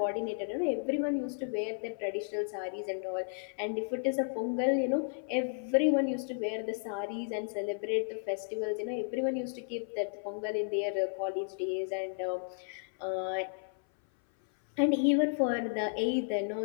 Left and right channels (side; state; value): right; silent; 56 dB below the other